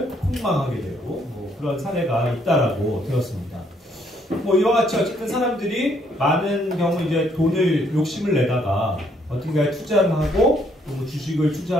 폭망하게 되고 그런 사례가 있다라고 들었습니다. 이와 같이 어쨌든 사람들이 많은 경우 이제 돈을 욕심을 내다가 어딘가에 투자를 하고 주식을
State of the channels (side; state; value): both; normal; correlation 0.69